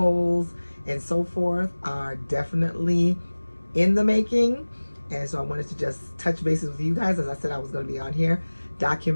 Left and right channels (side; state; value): both; inverted; correlation -1.00